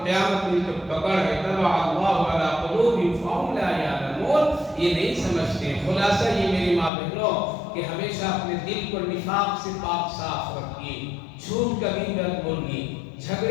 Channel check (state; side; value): drops out; right; at 6.9 s